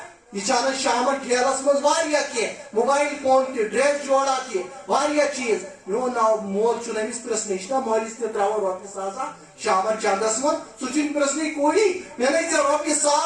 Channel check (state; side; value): identical; both; correlation 1.00